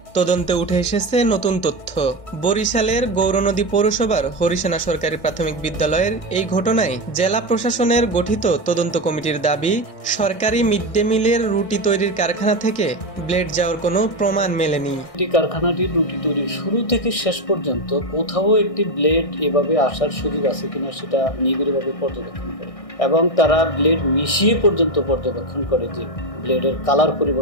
তদন্তে উঠে এসেছে নতুন তথ্য। বরিশালের গৌরনদী পৌরসভার হরিসেনা সরকারি প্রাথমিক বিদ্যালয়ের এই ঘটনায় জেলা প্রশাসনের গঠিত তদন্ত কমিটির দাবি, সরকারি মিড ডে মিলের রুটি তৈরির কারখানা থেকে ব্লেড যাওয়ার কোনো প্রমাণ মেলেনি। কারখানাটির রুটি তৈরির শুরু থেকে শেষ পর্যন্ত কোথাও একটি ব্লেড এভাবে আসার সুযোগ আছে কিনা সেটা নিবিড়ভাবে পর্যবেক্ষণ করে এবং তারা ব্লেড মিশিয়ে পর্যন্ত পর্যবেক্ষণ করে যে ব্লেডের কালার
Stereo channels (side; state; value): right; late; 1.6 ms